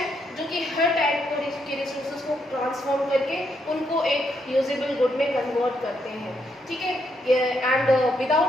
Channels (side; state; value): both; normal; correlation 0.77